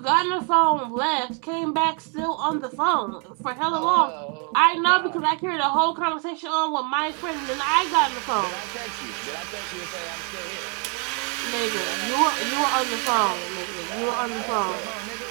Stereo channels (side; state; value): left; quieter; 37.0 dB